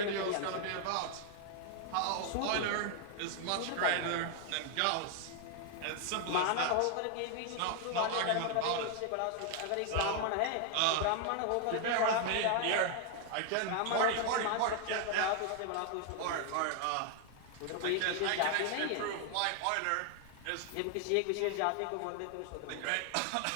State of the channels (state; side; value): different; both; correlation 0.00